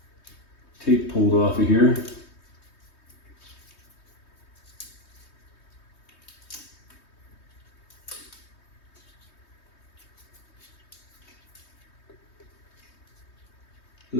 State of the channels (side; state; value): right; late; 3.2 ms